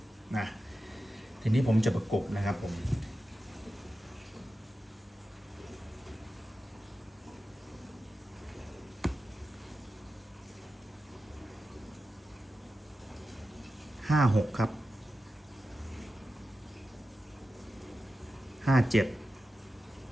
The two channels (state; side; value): normal; both; correlation 0.92